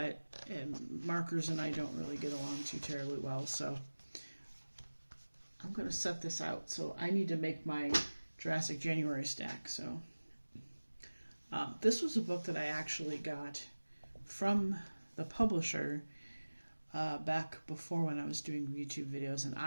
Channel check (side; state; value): both; inverted; correlation -1.00